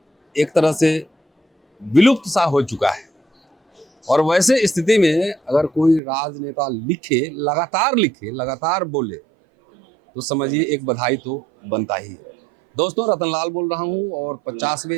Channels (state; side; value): drops out; left; at 6.0 s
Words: एक तरह से विलुप्त सा हो चुका है, और वैसे स्थिति में अगर कोई राजनेता लिखे, लगातार बोले, तो समझिए एक बधाई तो बनता ही है। दोस्तों, रतनलाल बोल रहा हूँ और